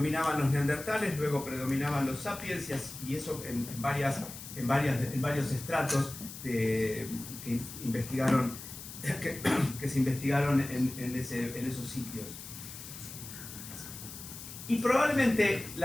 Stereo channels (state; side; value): noise; left; hiss, 12 dB below the sound